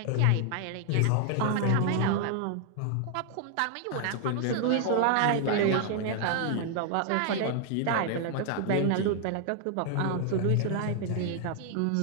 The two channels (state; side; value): different; both; correlation 0.00